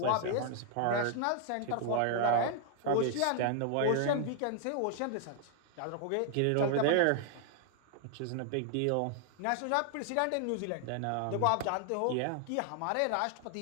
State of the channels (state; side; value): different; both; correlation 0.00